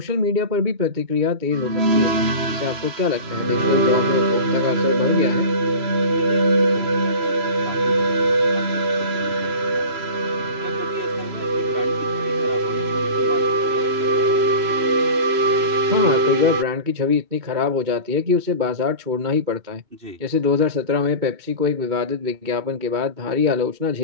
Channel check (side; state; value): left; late; 3.0 ms